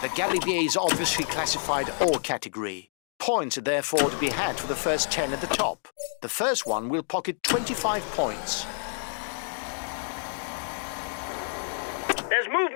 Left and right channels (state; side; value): silent; right; digital silence